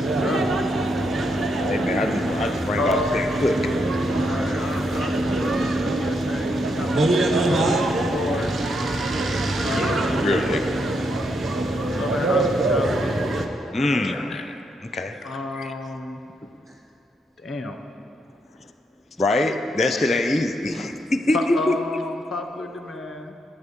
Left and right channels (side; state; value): both; normal; correlation 0.79